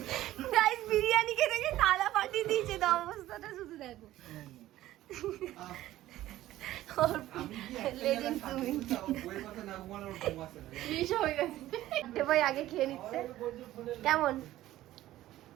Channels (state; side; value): quieter; left; 14.8 dB